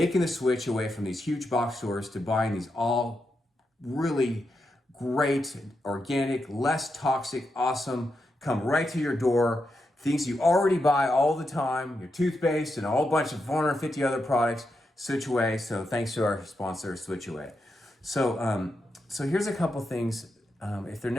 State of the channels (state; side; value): normal; both; correlation 0.85